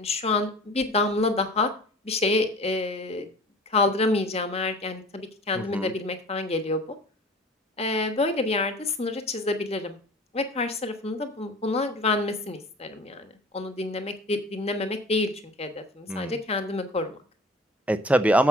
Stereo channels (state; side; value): normal; both; correlation 0.43